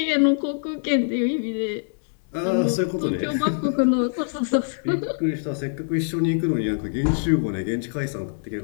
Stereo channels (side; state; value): right; silent; digital silence